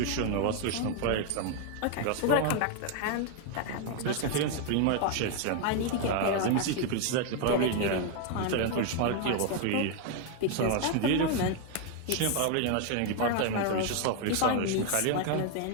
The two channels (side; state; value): both; different; correlation 0.01